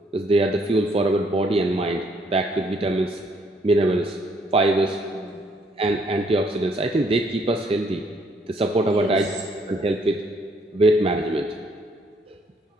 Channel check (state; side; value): normal; both; correlation 0.67